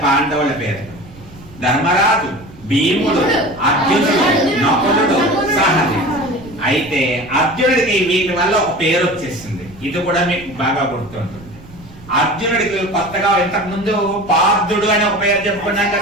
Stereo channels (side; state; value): right; noise; rumble, 20 dB below the sound